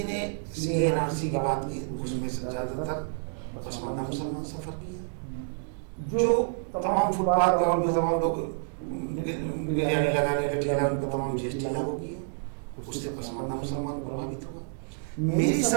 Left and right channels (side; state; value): left; silent; digital silence